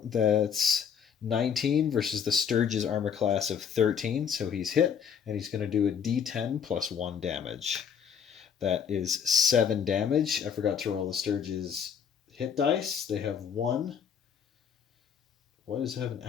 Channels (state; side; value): quieter; right; 7.5 dB